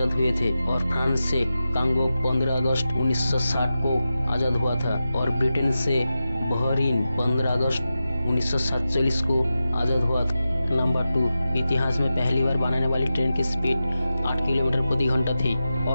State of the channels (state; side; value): inverted; both; correlation -0.92